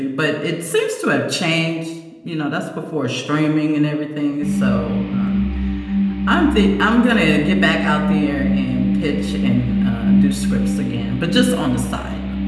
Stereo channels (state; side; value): identical; both; correlation 1.00